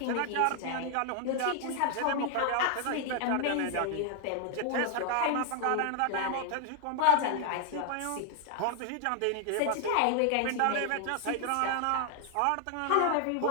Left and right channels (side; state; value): both; different; correlation 0.00